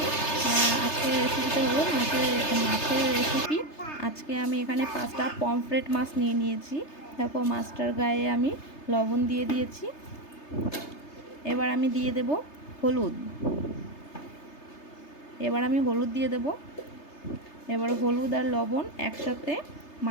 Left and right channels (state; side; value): late; right; 3.3 ms